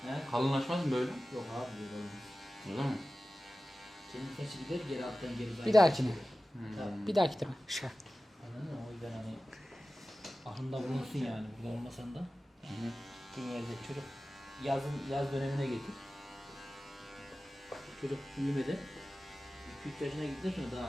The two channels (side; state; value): both; normal; correlation 0.96